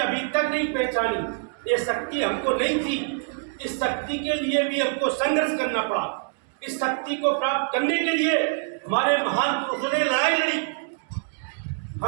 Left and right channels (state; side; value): silent; left; digital silence